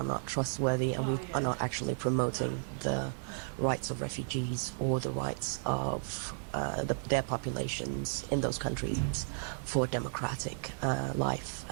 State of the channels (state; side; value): silent; left; 55 dB below the other